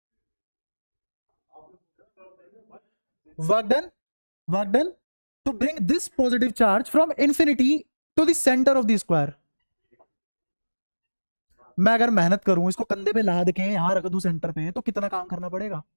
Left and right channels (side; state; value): both; inverted; correlation -1.00